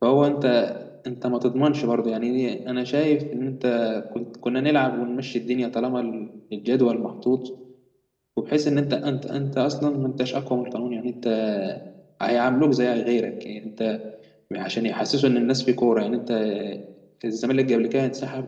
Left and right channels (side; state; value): both; identical; correlation 1.00